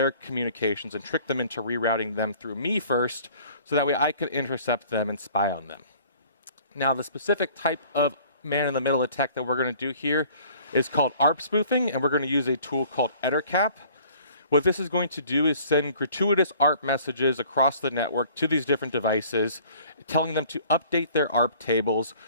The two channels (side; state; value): both; inverted; correlation -0.53